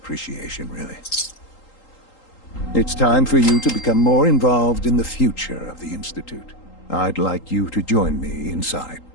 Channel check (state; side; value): late; right; 3.8 ms